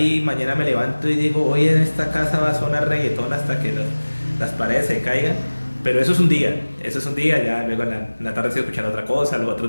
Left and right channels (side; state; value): both; inverted; correlation -1.00